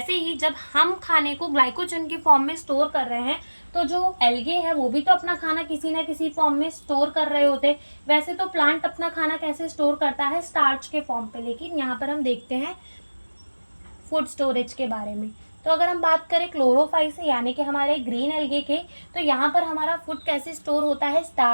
ही जब हम खाने को ग्लाइकोजन के फॉर्म में स्टोर कर रहे हैं, तो जो एल्गे है वो भी तो अपना खाना किसी ना किसी फॉर्म में स्टोर कर रहे होते। वैसे तो प्लांट अपना खाना कैसे स्टोर करता है, स्टार्च के फॉर्म पे, लेकिन यहाँ पर हम देखते हैं फूड स्टोरेज के बारे में। तो अगर हम बात करें क्लोरोफाइसी यानी कि हमारे ग्रीन एल्गे के, तो यहाँ पर हमारा फूड कैसे स्टोर होता है,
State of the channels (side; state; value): both; inverted; correlation -1.00